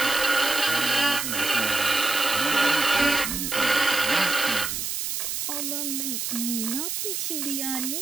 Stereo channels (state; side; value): noise; right; hiss, 2 dB below the sound